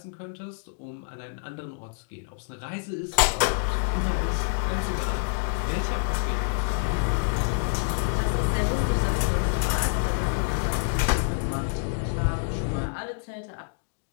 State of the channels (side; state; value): right; silent; digital silence